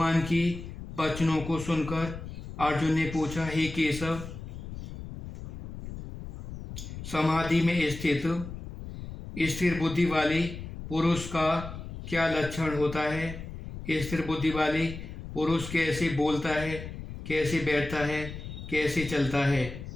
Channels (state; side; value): noise; left; rumble, 10 dB below the sound